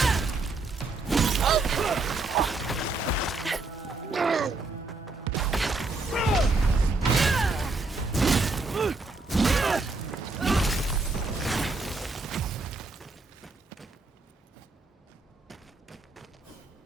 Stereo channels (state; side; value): quieter; left; 3.4 dB